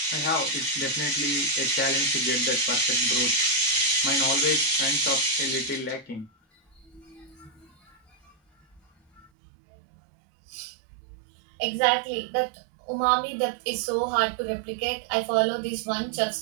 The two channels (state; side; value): drops out; left; at 9.3 s